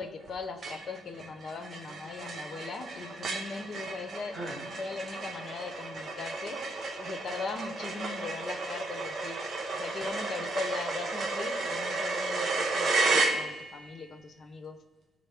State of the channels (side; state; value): both; normal; correlation 0.74